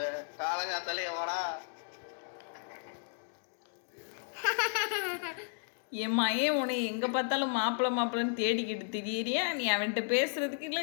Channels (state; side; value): silent; right; digital silence